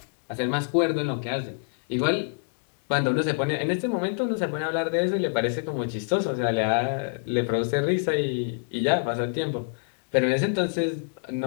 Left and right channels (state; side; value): silent; right; 61 dB below the other